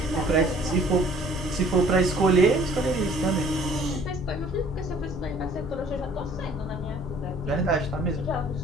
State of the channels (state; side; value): normal; both; correlation 0.55